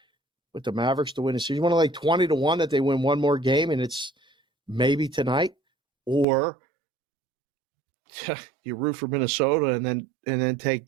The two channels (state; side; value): drops out; left; at 6.2 s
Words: with the Mavericks to win the series. You want to lay 20-1 that they win one more game and it's maybe tonight, or you root for Minnesota and then take